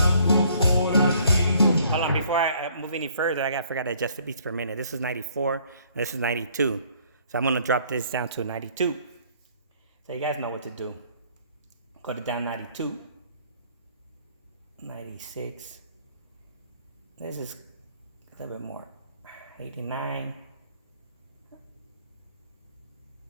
Hold on, before I move any further, I forgot to adjust the beats per minute. This is 94, and this is 92. So I'm gonna drop this down to 92. So you guys know what to do. Go to down 92, 96. This is a little bit more. 89.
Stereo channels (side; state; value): both; inverted; correlation -0.61